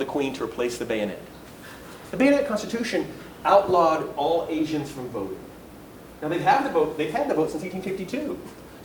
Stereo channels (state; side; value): identical; both; correlation 1.00